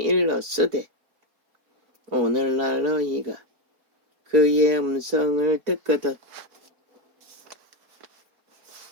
오늘날 너희가 그의 음성을 듣거든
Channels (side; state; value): left; late; 4.6 ms